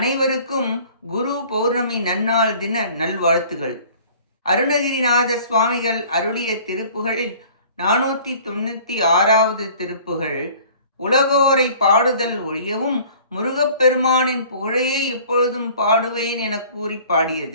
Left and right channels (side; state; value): both; inverted; correlation -0.50